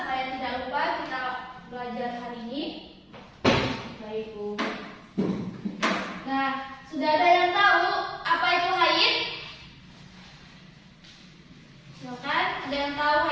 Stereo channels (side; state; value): both; identical; correlation 1.00